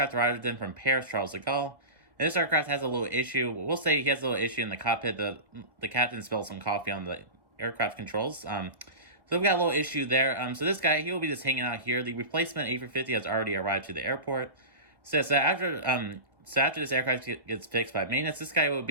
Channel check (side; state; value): left; late; 1.6 ms